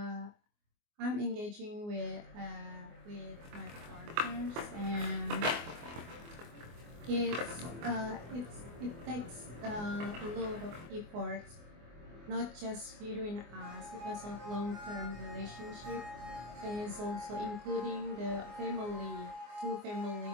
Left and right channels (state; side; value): late; left; 24 ms